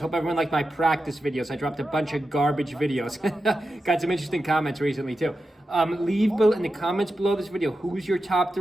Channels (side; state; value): both; normal; correlation 0.90